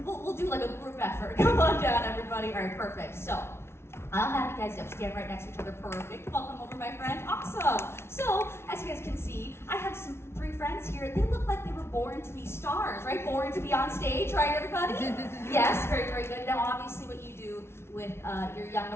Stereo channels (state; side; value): late; right; 0.12 ms